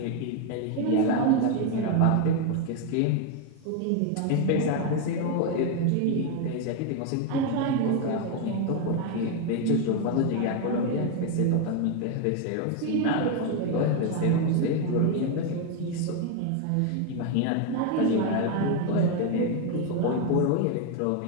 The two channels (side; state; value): both; different; correlation 0.01